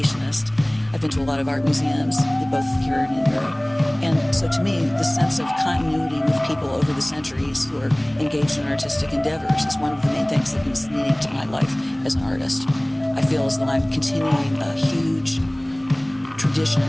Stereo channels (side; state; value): right; noise; hum, 27 dB below the sound